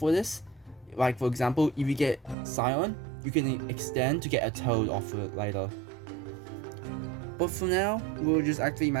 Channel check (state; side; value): drops out; left; at 2.4 s